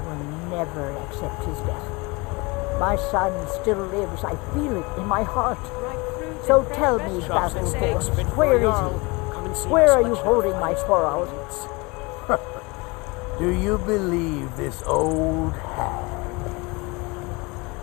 never accept his death. My son still lives. I feel it in my heart. So tell me, Battleborn, where is he? Where are you holding my Thorold? Do you believe this old hag?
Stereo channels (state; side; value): quieter; right; 26.2 dB